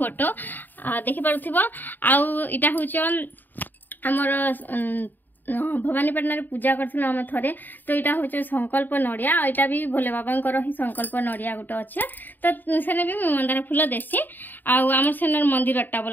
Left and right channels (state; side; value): late; right; 0.090 ms